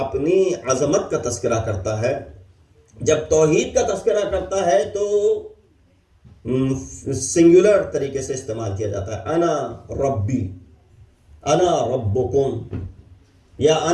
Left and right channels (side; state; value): both; identical; correlation 1.00